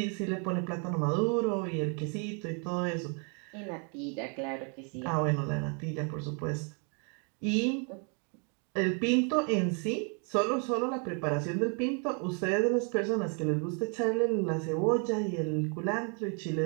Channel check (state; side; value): quieter; left; 38.3 dB